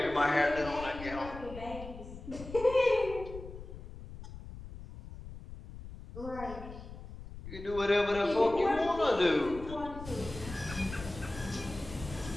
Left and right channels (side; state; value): left; noise; rumble, 12 dB below the sound